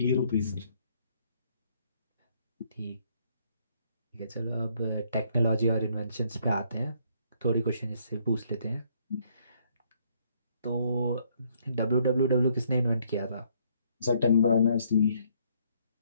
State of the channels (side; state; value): both; inverted; correlation -0.68